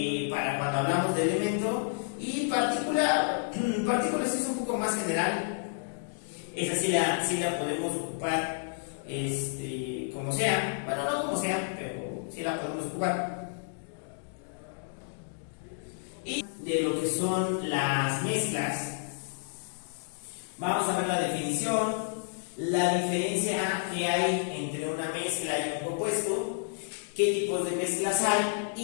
para cuando hablamos de elemento. Y partícula sí es un poco más general. Esa sí la podemos ocupar como sea. Bueno, no como sea, pero sí la podemos ocupar. Y de lo que son las mezclas, vamos a ver la definición, la diferencia que hay entre una mezcla y un compuesto, qué tipos de mezclas hay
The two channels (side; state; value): right; silent; digital silence